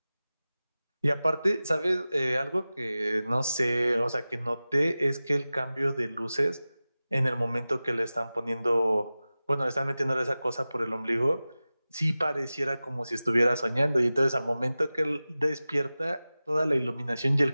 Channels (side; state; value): both; inverted; correlation -0.96